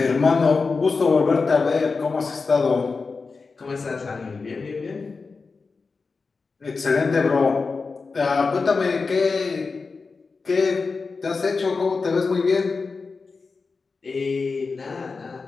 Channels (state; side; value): quieter; right; 4.4 dB